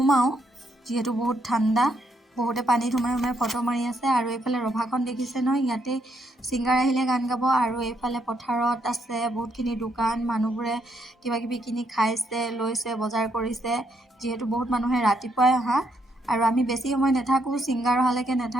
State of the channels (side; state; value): both; normal; correlation 0.75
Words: যেহেতু বহুত ঠাণ্ডা বহুতে পানীত সোমাই ফটো মাৰি আছে আৰু এইফালে ৰভাখন দেখিছে নহয় ইয়াতে সিংগাৰ আহিলে গান গাব আৰু এইফালে পথাৰত আছে বহুতখিনি দোকান মানুহবোৰে কিবা কিবি কিনি খাইছে লৈছে বজাৰ কৰিছে যেহেতু বহুত মানুহে ৰাতিপুৱাই অহা আৰু আমি বেছি সময় নাথাকো সিংগাৰ অহালৈকে